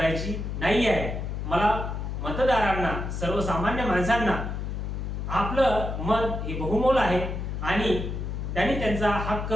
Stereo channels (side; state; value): left; noise; hum, 4 dB below the sound